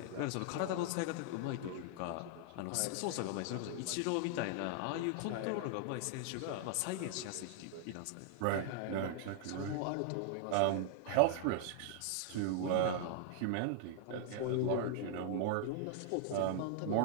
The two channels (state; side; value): different; both; correlation 0.00